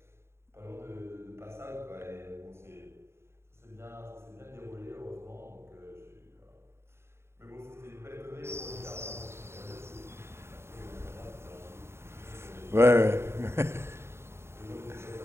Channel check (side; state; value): left; late; 0.12 ms